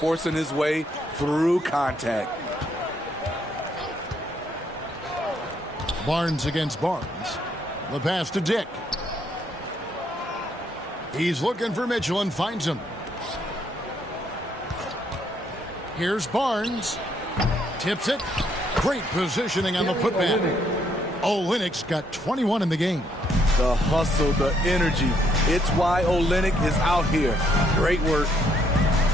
his way through contact. Barnes against Barnes. The pass to Dick. He's looking for Mitchell and finds him. Here's Barnes. Tips it. Great positioning on the putback. Olynyk's got 21 in the game. The hustle, the energy. It's why Olynyk is out here. Great work.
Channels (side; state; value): both; normal; correlation 0.71